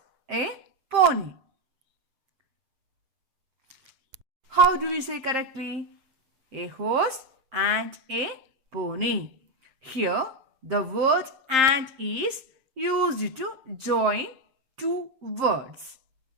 a pony. How do we say correctly? A horse and a pony. Here the word and is used to join two words.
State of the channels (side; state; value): left; late; 7.6 ms